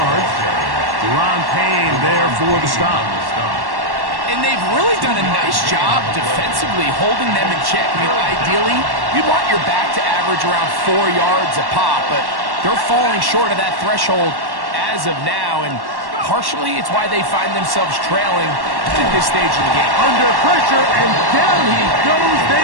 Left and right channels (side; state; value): left; late; 1.1 ms